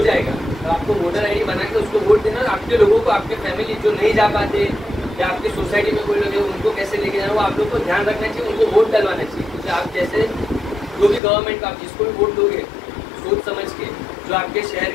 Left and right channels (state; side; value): drops out; right; at 11.2 s